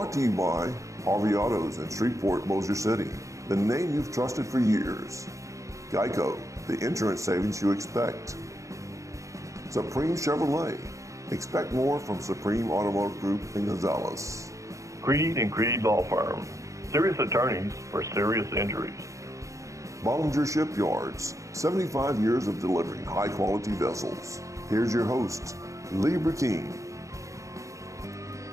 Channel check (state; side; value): late; left; 0.15 ms